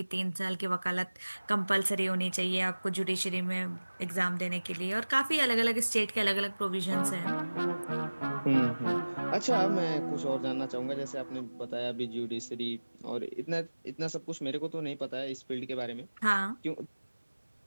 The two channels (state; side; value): inverted; both; correlation -1.00